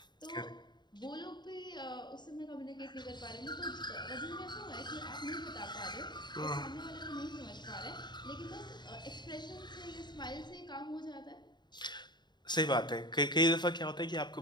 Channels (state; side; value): late; right; 0.21 ms